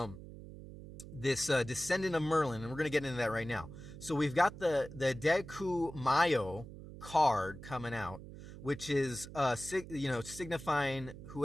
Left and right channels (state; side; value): noise; right; hum, 14 dB below the sound